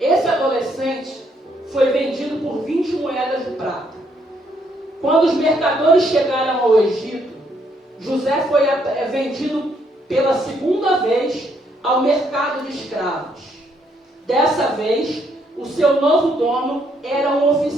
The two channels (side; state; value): both; normal; correlation 0.72